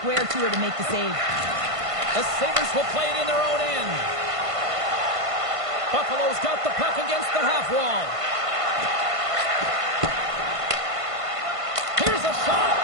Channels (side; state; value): left; late; 1.5 ms